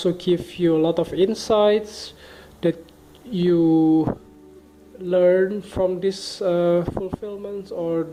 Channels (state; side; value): identical; both; correlation 1.00